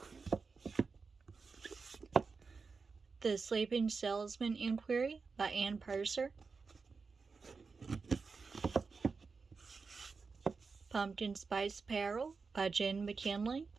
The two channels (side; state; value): left; quieter; 4.7 dB